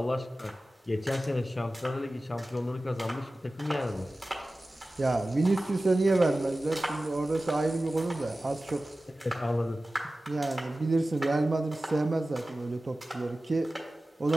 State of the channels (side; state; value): both; normal; correlation 0.96